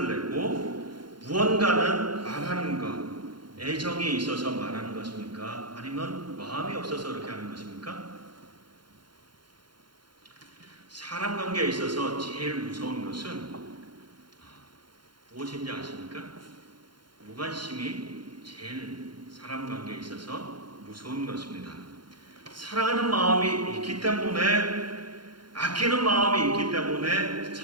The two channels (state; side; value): late; left; 0.72 ms